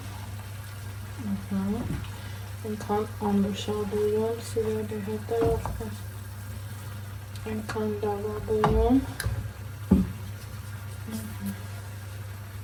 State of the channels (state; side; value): identical; both; correlation 1.00